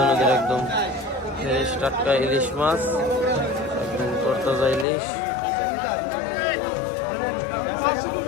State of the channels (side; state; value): right; drops out; at 4.9 s